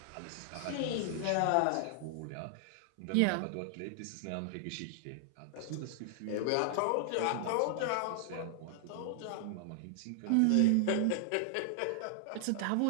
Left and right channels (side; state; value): both; different; correlation 0.00